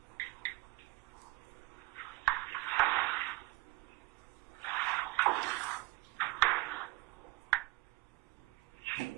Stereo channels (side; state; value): left; quieter; 21.1 dB